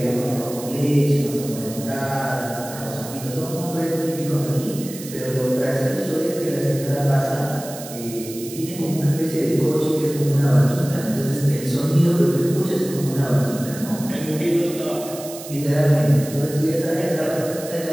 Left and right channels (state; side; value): noise; right; hiss, 13 dB below the sound